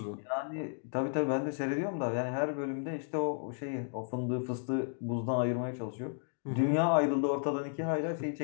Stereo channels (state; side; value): silent; right; digital silence